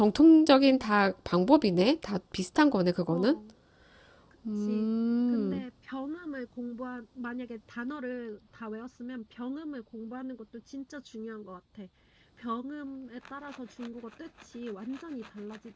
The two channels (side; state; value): both; identical; correlation 1.00